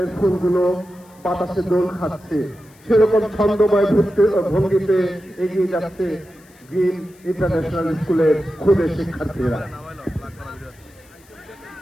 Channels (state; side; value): noise; left; hiss, 29 dB below the sound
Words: ফুলগুলো বাতাসে দোল খাচ্ছে, সেরকম ছন্দময় ভঙ্গিতে এগিয়ে যাচ্ছে গ্রিন ইন্টারন্যাশনাল স্কুলের খুদে শিক্ষার্থীরা।